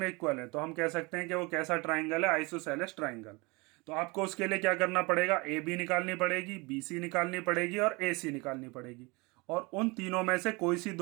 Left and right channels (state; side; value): quieter; left; 26.5 dB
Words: इक्वल है तो हम कह सकते हैं कि वो कैसा ट्राइंगल है? Isosceles triangle. तो आपको उसके लिए क्या करना पड़ेगा? ए बी निकालनी पड़ेगी, बी सी निकालनी पड़ेगी और ए सी निकालनी पड़ेगी। और उन तीनों में से कोई सी